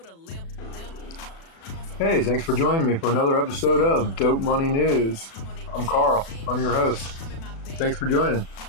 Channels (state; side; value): late; right; 36 ms